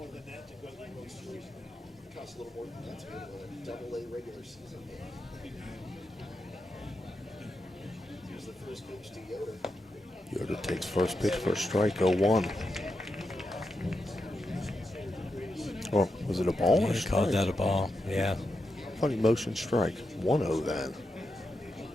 Yoder takes first pitch for a strike, 0-1. Oh, was it a ball or a strike? Called that a ball, yeah. Funny motion strike, 1-0 then.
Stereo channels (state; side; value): normal; both; correlation 0.86